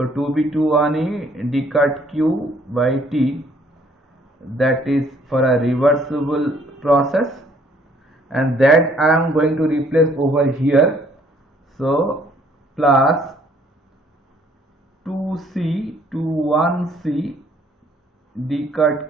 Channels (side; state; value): both; normal; correlation 0.62